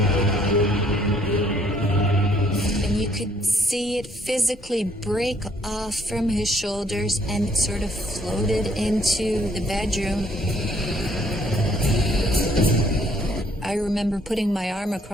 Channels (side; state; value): both; normal; correlation 0.65